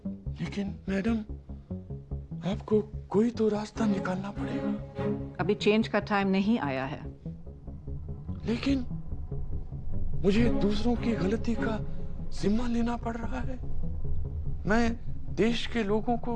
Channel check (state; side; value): identical; both; correlation 1.00